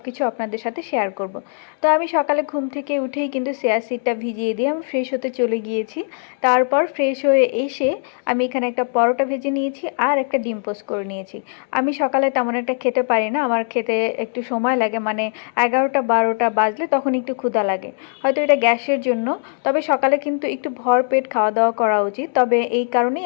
কিছু আপনাদের সাথে শেয়ার করব। তো আমি সকালে ঘুম থেকে উঠেই কিন্তু চিয়া সিডটা ভিজিয়ে দিয়ে আমি ফ্রেশ হতে চলে গিয়েছি। তারপর ফ্রেশ হয়ে এসে আমি এখানে একটা পরোটা ভেজে নিয়েছি আর একটা ডিম পোস্ট করে নিয়েছি। আমি সকালে তেমন একটা খেতে পারি না, আমার খেতে একটু সময় লাগে, মানে 11টা-12টা বাজলে তখন একটু ক্ষুধা লাগে, হয়তো এটা গ্যাসের জন্য। তবে সকালে কিন্তু একটু ভরপেট খাওয়া দাওয়া করা উচিত। তবে এই কারণেই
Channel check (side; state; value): right; silent; 59 dB below the other